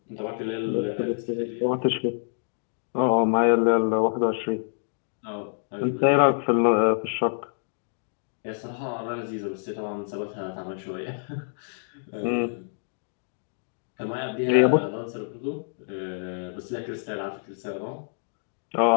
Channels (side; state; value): right; silent; digital silence